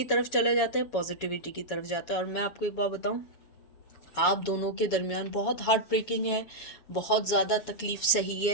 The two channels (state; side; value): late; right; 7.1 ms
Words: तरफ चले जाते हैं, पॉजिटिविटी की तरफ जाता है। और मैं आपको एक बात बताऊं, आप दोनों के दरमियान बहुत हार्ट ब्रेकिंग है, बहुत ज़्यादा तकलीफ़ सही